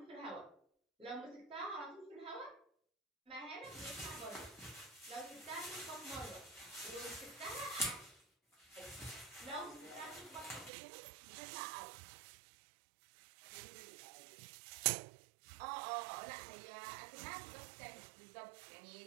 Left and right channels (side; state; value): left; drops out; at 10.7 s